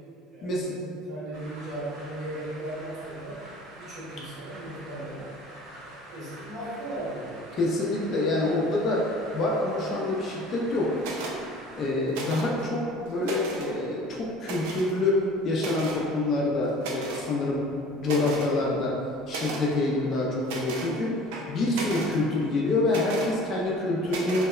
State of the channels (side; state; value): both; normal; correlation 0.46